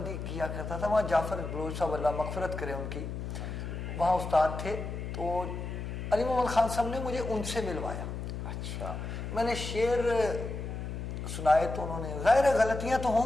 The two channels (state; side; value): noise; left; hum, 6 dB below the sound